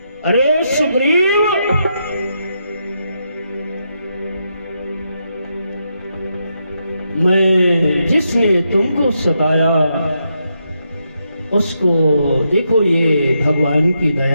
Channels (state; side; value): inverted; both; correlation -0.81